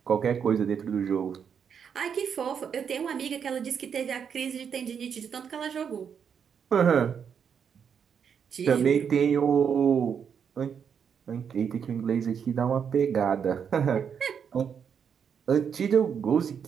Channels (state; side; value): quieter; left; 7.3 dB